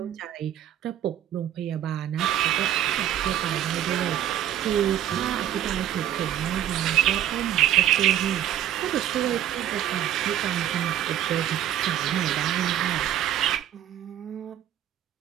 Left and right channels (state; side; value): quieter; left; 11.4 dB